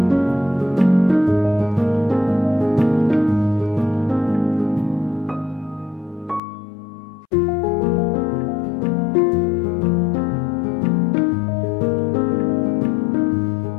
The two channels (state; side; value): drops out; right; at 6.4 s